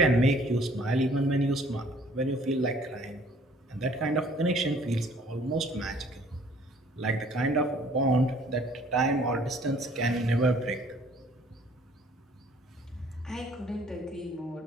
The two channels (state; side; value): normal; both; correlation 0.57